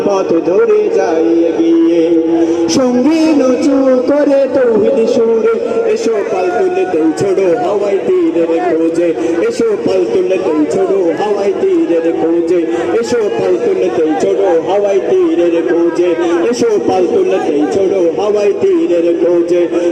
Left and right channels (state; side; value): identical; both; correlation 1.00